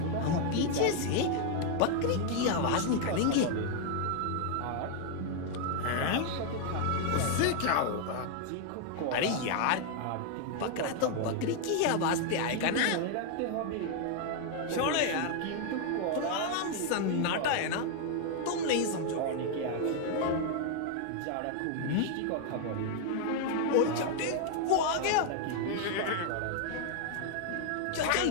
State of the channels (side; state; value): both; different; correlation 0.00